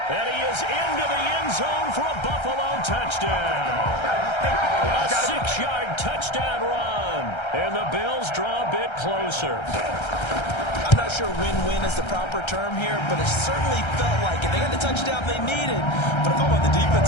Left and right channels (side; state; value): right; late; 1.3 ms